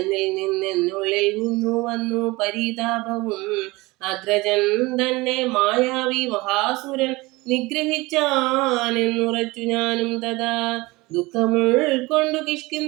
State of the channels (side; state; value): left; quieter; 22.0 dB